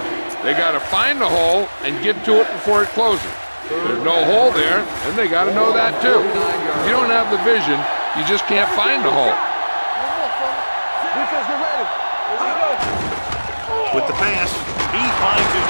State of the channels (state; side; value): inverted; both; correlation -1.00